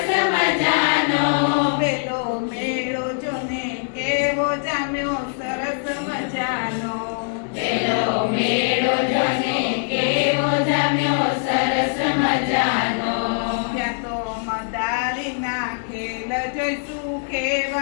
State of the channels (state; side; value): silent; right; digital silence